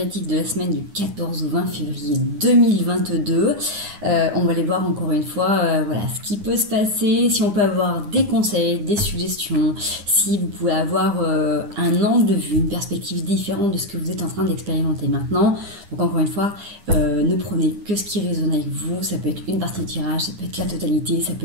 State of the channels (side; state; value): left; late; 9.8 ms